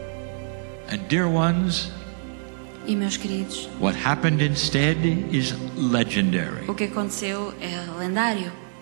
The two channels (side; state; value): left; silent; digital silence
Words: And dear ones, E, meus queridos, what happened instead is legendary. o que aconteceu é lendário.